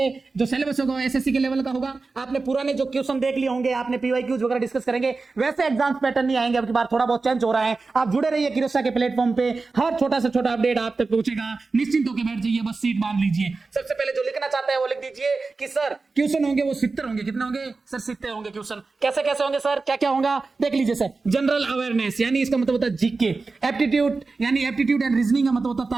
जो सिलेबस होगा SSC के लेवल का होगा। आपने पुराने जो क्वेश्चन देख लिए होंगे, आपने PYQs वगैरह डिस्कस करेंगे, वैसे एग्जाम पैटर्न नहीं आएंगे। अब की बार थोड़ा बहुत चेंज हो रहा है। आप जुड़े रहिए किरोसा के प्लेटफॉर्म पे, हर छोटा से छोटा अपडेट आप तक पहुंचेगा। निश्चिंत होकर बैठ जाइए, बस सीट बांध लीजिए। सबसे पहले जो लिखना चाहता है वो लिख दीजिए कि सर क्वेश्चन होंगे वो 70 होंगे। कितने होंगे सर? 70 होंगे क्वेश्चन। कैसे कैसे होंगे सर, क्या क्या होगा देख लीजिए। सर जनरल अवेयरनेस यानी इसका मतलब होता है जीके। एप्टीट्यूड यानी एप्टीट्यूड एंड रीजनिंग का मतलब होता है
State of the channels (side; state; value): left; quieter; 4.0 dB